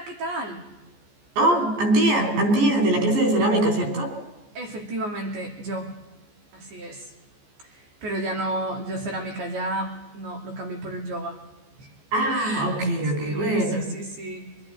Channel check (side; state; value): left; late; 14 ms